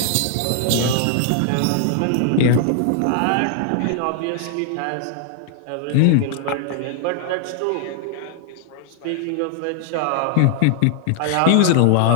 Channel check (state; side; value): different; both; correlation 0.00